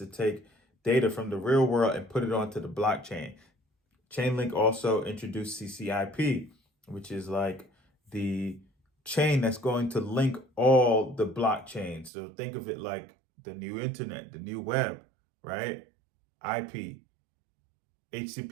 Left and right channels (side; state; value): left; drops out; at 12.1 s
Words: take data from the real world and put it onto the blockchain. Chainlink also introduced CCIP, which is like the chain that's going to link all the blockchains. So think of it like the new internet, the new web, right? IP,